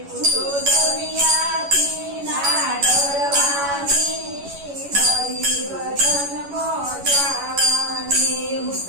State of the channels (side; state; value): left; late; 11 ms